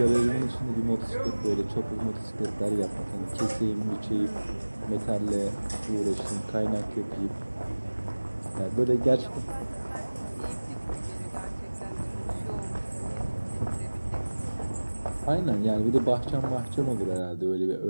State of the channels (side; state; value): both; inverted; correlation -1.00